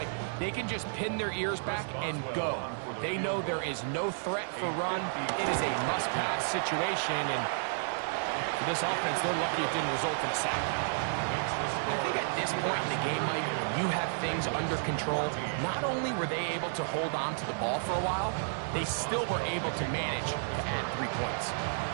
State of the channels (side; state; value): left; silent; digital silence